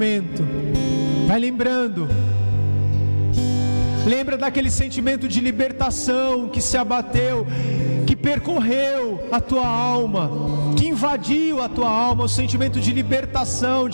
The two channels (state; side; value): inverted; both; correlation -1.00